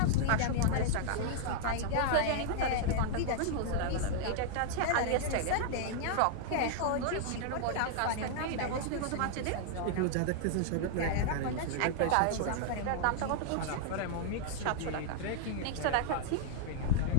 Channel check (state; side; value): different; both; correlation -0.01